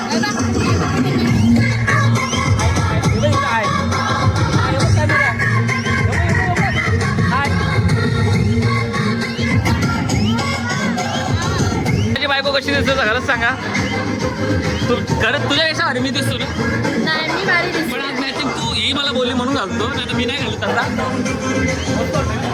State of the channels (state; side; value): identical; both; correlation 1.00